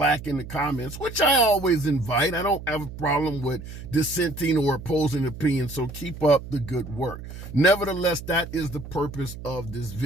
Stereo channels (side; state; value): right; noise; hum, 12 dB below the sound